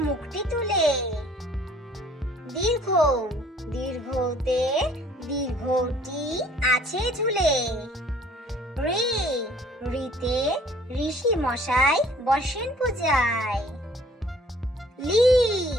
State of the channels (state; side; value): normal; both; correlation 0.56